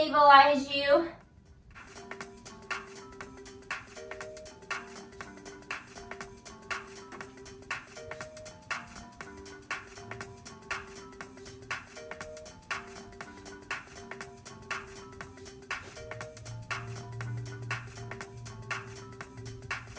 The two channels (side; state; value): both; identical; correlation 1.00